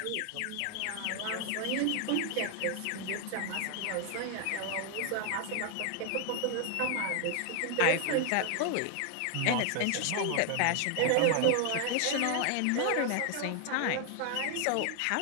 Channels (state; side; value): different; both; correlation 0.00